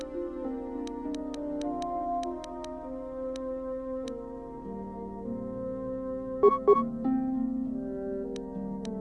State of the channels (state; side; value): identical; both; correlation 1.00